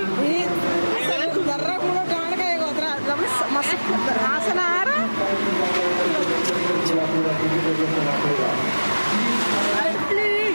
దర్రా కూడా కానకాయ మస్తు ఆసనారా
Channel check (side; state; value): both; inverted; correlation -1.00